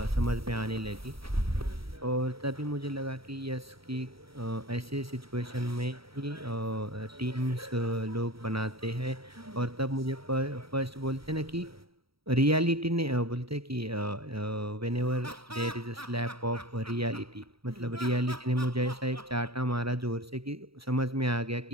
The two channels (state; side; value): late; left; 0.75 ms